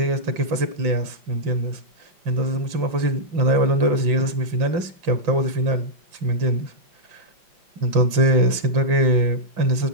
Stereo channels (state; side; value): late; left; 5.7 ms